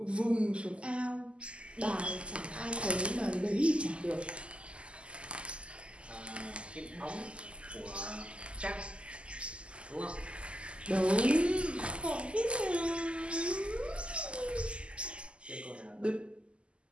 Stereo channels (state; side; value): late; left; 0.054 ms